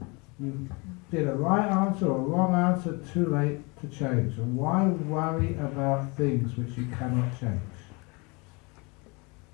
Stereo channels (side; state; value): right; quieter; 28.7 dB